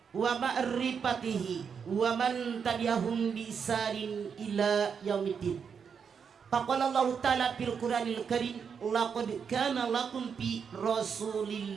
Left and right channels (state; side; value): quieter; left; 6.6 dB